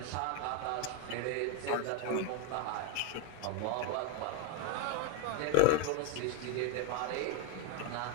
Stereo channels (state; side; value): different; both; correlation 0.01